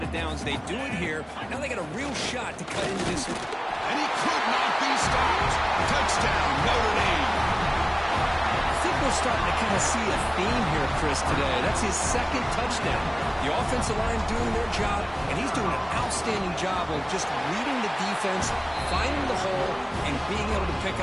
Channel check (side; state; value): both; identical; correlation 1.00